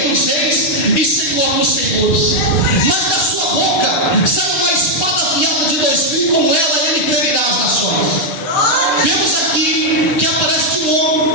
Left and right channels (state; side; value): late; right; 6.6 ms